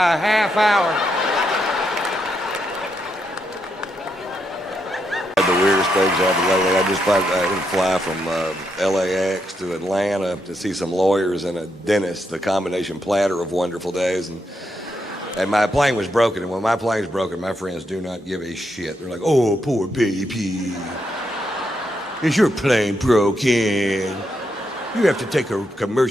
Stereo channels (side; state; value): both; normal; correlation 0.81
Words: a half hour. The weirdest things happened lately. I just fly from LAX to Atlanta to see some lawyers and a dentist, the combination platter of wonderful days. And my plane was broken, and when my plane's broken, my friends do not give a shit. They're like, oh, poor baby. Is your plane broken? You have to take a